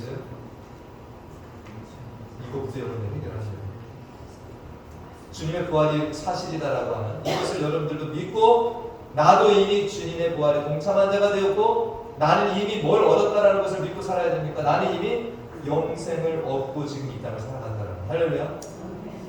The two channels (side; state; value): both; identical; correlation 1.00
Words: 이거부터 여러분들 해결하셔야 돼요. 주님의 부활이 사실이다라고 하는 이것을 여러분들도 믿고, 나도 이미 주님의 부활에 동참한 자가 되었고, 나는 이미 뭘 얻었다라는 것을 믿고 살아야 됩니까? 나는 이미 영생을 얻고 지금 이 땅을 살아간다라는 거예요. 할렐루야.